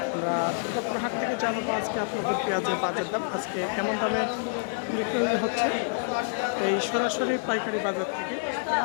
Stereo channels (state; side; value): silent; right; 60 dB below the other